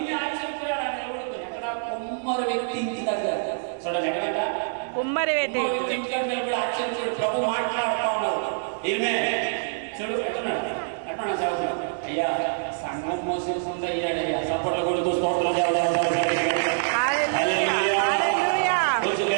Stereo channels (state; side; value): silent; left; digital silence